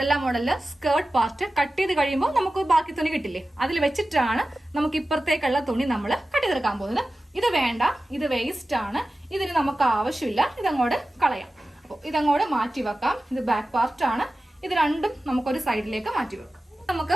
മോഡലില് സ്കേർട്ട് പാർട്ട് കട്ട് ചെയ്ത് കഴിയുമ്പോൾ നമുക്ക് ബാക്കി തുണി കിട്ടില്ലേ, അതിൽ വെച്ചിട്ടാണ് നമുക്ക് ഇപ്പുറത്തേക്കുള്ള തുണി നമ്മൾ കട്ട് ചെയ്തെടുക്കാൻ പോകുന്നത്. ഇത് വേണ്ട, ഇത് വേസ്റ്റ് ആണ്, ഇതിന് നമുക്ക് ആവശ്യമില്ല, ഇതങ്ങോട്ട് കളയാം. അപ്പോൾ ഇതങ്ങോട്ട് മാറ്റി വെക്കാം. ഇത് ബാക്ക് പാർട്ട് ആണ്. ഇത് രണ്ടും നമുക്കൊരു സൈഡിലേക്ക് മാറ്റി വെക്കാം. നമുക്ക്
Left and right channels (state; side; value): normal; both; correlation 0.95